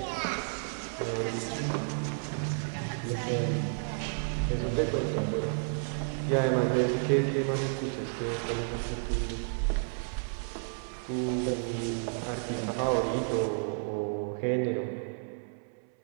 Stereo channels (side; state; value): left; silent; 57 dB below the other